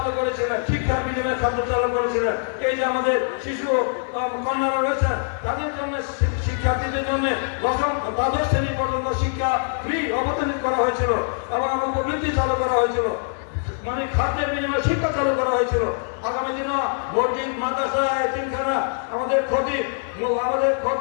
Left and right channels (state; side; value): silent; right; 63 dB below the other